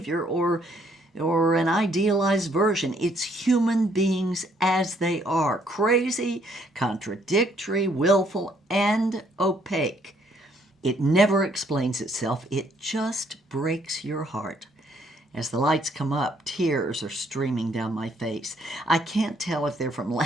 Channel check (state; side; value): normal; both; correlation 0.67